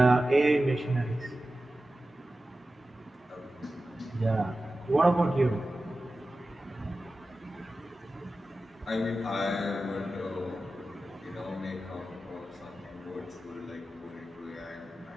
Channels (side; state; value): both; normal; correlation 0.94